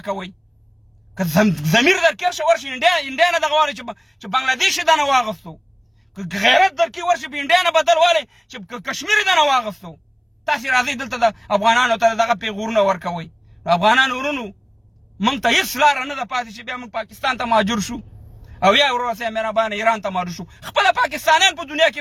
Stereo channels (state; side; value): identical; both; correlation 1.00